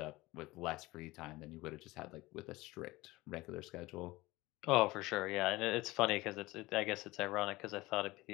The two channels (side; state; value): right; quieter; 20.2 dB